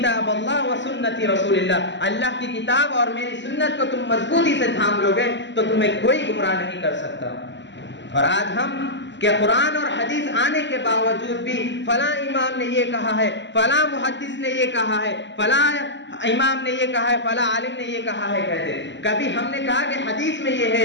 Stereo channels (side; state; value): right; late; 0.53 ms